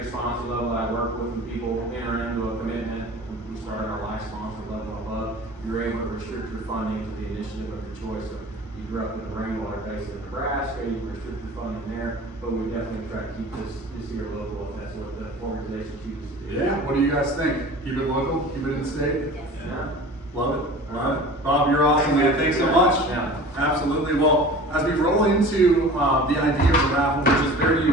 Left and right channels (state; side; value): normal; both; correlation 0.40